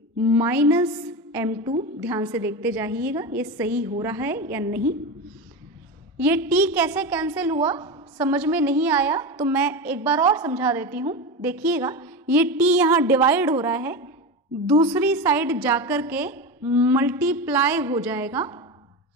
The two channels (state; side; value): normal; both; correlation 0.21